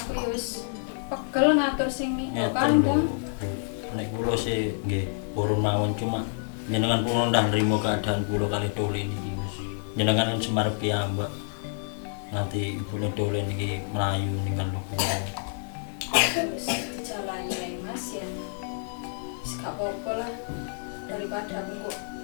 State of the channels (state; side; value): silent; right; 59 dB below the other